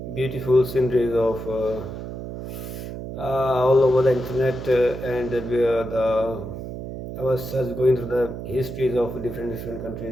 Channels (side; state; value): right; noise; hum, 8 dB below the sound